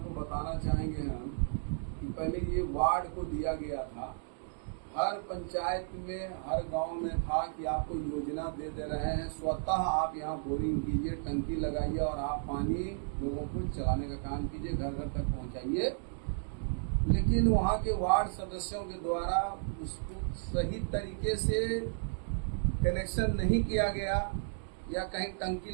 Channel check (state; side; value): silent; left; digital silence